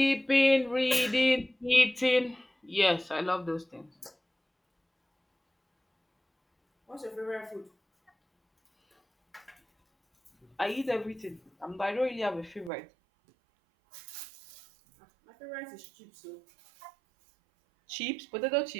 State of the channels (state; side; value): drops out; left; at 12.7 s